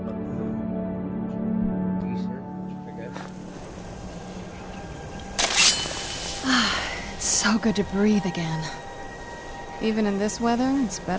other one's decent, I guess. It's so good to breathe again. Even in this weather, it's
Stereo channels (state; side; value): identical; both; correlation 1.00